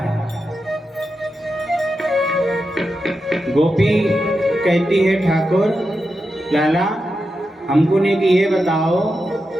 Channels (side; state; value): both; normal; correlation 0.88